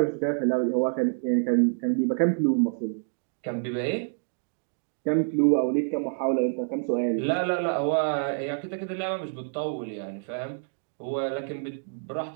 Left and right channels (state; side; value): silent; left; digital silence